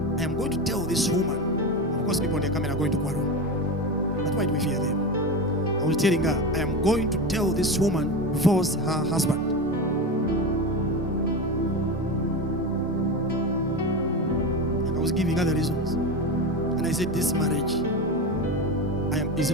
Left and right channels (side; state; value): both; normal; correlation 0.21